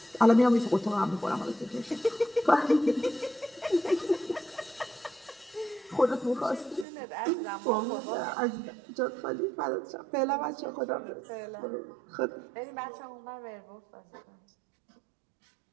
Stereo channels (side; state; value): left; drops out; at 6.9 s